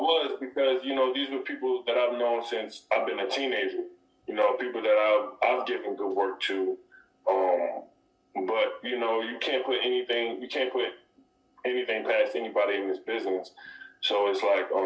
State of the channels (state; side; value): identical; both; correlation 1.00